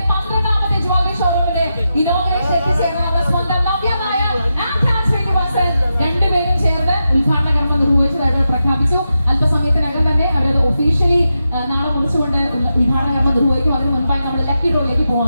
12ാമത്തെ ജ്വല്ലറി ഷോറൂമിന്റെ ഇനോഗ്രേഷൻ എത്തിച്ചേർന്ന സ്വന്തം നവ്യമായ ശ്രീനിവാസൻ രണ്ടുപേരും ചേർന്ന് ഉദ്ഘാടന കർമ്മം നിർവഹിച്ചതായിട്ട് പ്രഖ്യാപിച്ചു. അല്പസമയത്തിനകം തന്നെ അവരത് ഒഫീഷ്യലി നാളെ കുറിച്ചുകൊണ്ട് ഉദ്ഘാടന കർമ്മം നിർവഹിക്കും. അതിന് മുൻപായി നമ്മൾ ലക്കി ഡ്രോയിലേക്ക്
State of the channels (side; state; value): both; inverted; correlation -0.88